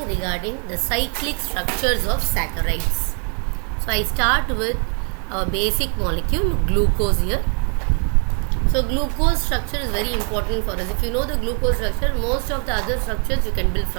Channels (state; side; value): quieter; left; 39.4 dB